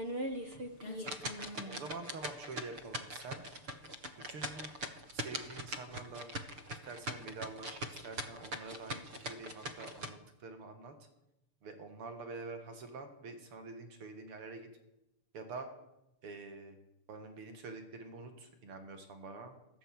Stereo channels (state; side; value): late; left; 6.8 ms